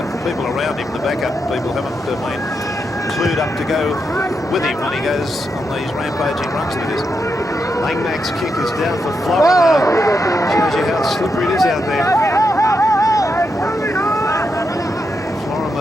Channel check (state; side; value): normal; both; correlation 0.83